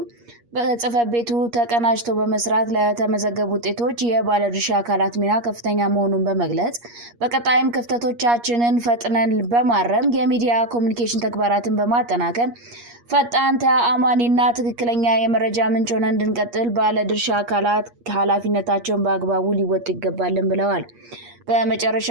በጽሕፈት ቤቱ ተቀናጅቶ በመስራት ለተመዘገቡ ውጤቶች የባለድርሻ አካላት ሚና ከፍተኛ መሆኑን በመግለጽ በቀጣይም ክፍተቶቻችንን ፈጥነን በማረም የሚዲያ ኮሙኒኬሽን ተግባራትን በማጠናከር ፈጣን፣ ተአማኒና ትክክለኛ የመረጃ ምንጭ ሆነን እንድንቀጥል ባለድርሻ አካላት ኃላፊነታቸውን በአግባቡ ሊወጡ ይገባልን ብለዋል።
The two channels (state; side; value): late; left; 8.5 ms